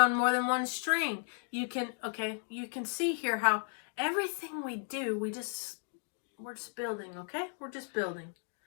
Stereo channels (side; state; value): right; silent; 55 dB below the other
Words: more than one string. You can see here how everything we do, we're just building, okay? We're just building.